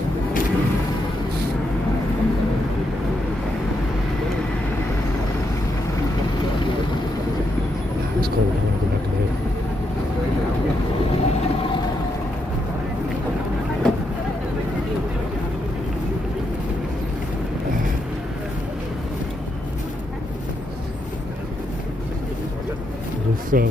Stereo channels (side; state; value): both; normal; correlation 0.80